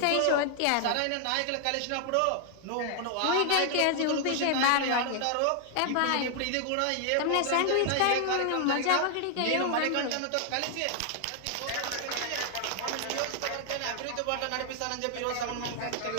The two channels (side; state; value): both; different; correlation 0.00